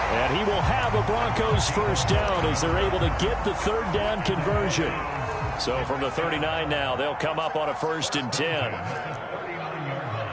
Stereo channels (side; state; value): both; identical; correlation 1.00